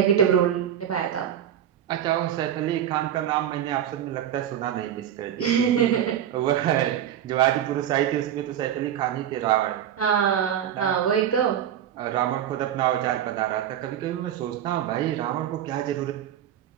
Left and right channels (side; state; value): left; quieter; 10.3 dB